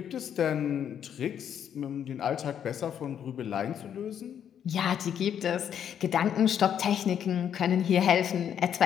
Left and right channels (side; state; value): right; quieter; 9.0 dB